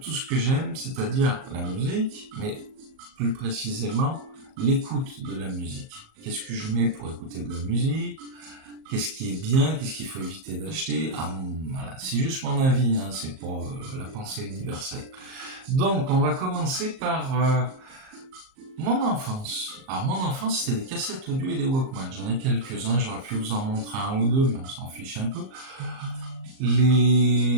ce que j'aime, c'est-à-dire la musique, mais plus précisément l'écoute de la musique. Qu'est-ce que je mets pour écouter de la musique? Qu'est-ce qui est bien? Qu'est-ce qu'il faut éviter d'acheter? Voilà, c'est juste mon avis, hein, c'est pas la pensée universelle. Donc, on va commencer par mon enfance. Alors, mon enfance, c'était des cassettes audio et des Walkman. J'en ai quelques-uns, j'aurais pu vous en montrer un ou deux, mais on s'en fiche un peu.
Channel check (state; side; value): late; left; 38 ms